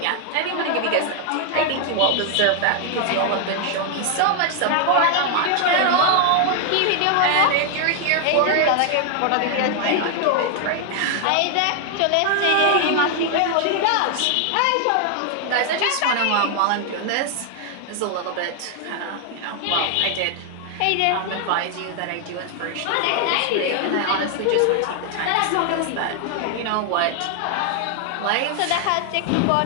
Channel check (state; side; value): different; both; correlation 0.00